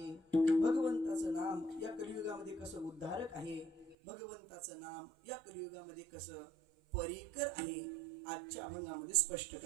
भगवंताचं नाम या कलियुगामध्ये कसं उद्धारक आहे, भगवंताचं नाम या कलियुगामध्ये कसं परिकर आहे आजच्या अभंगामध्ये स्पष्ट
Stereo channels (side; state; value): left; drops out; at 4.0 s